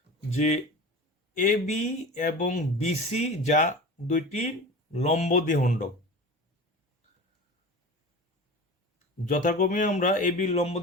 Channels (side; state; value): both; normal; correlation 0.34